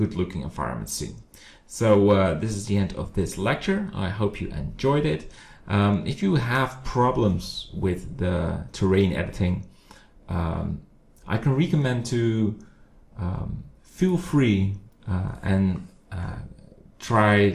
looking environment scene. So this is the end of this lecture. I hope you enjoyed it. If you have problems with the terrain editing, I can recommend to feel free and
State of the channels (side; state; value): both; identical; correlation 1.00